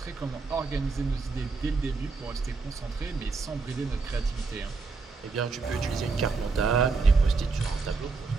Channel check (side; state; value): left; quieter; 4.3 dB